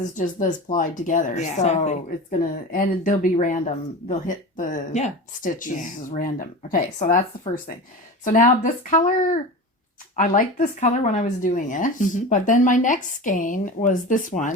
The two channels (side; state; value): both; normal; correlation 0.30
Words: just this plied together. Yeah, so it's and they'll be random. They'll hit the stitches as random. Okay. So that's the first thing. So now this color, I liked this color when I was doing it, but then my next skein was this